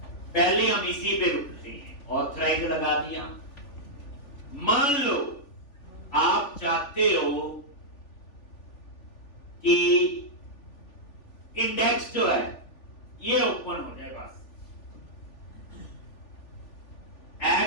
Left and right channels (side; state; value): right; late; 3.4 ms